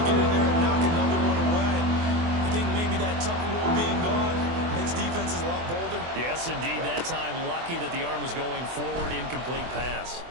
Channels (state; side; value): late; left; 24 ms